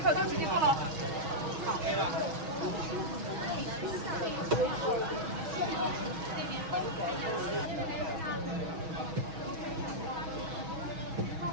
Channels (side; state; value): left; late; 6.2 ms